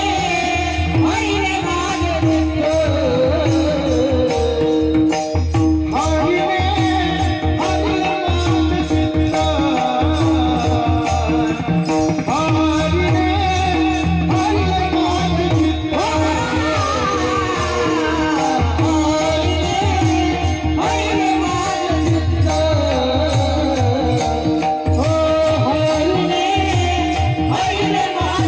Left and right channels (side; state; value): both; identical; correlation 1.00